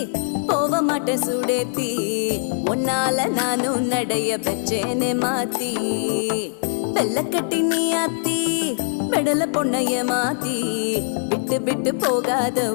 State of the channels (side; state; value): right; silent; digital silence